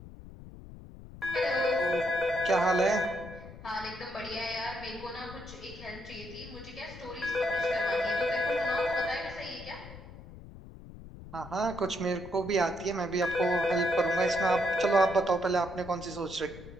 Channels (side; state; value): left; noise; rumble, 15 dB below the sound